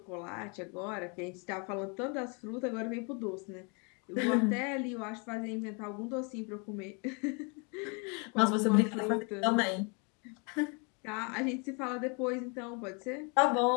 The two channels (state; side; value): quieter; right; 34.4 dB